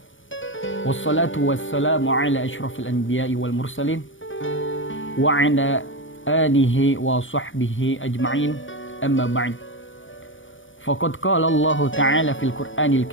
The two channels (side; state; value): right; late; 0.57 ms